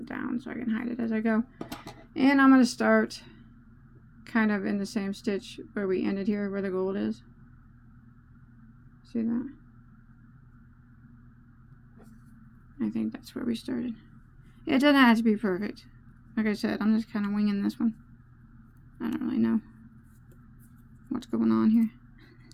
down so I can hide it as I go. And I'm going to start kind of in the same stitch where we ended here, where the gold is. See that? I think that's where we started. It doesn't have to be perfect. Like I said, I'm just kind of winging this one. I don't really know what's going on here.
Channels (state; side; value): identical; both; correlation 1.00